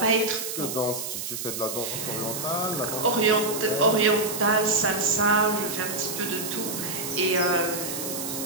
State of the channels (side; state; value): right; noise; hiss, 5 dB below the sound